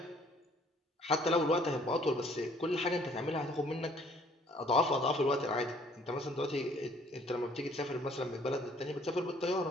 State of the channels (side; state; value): both; normal; correlation 0.60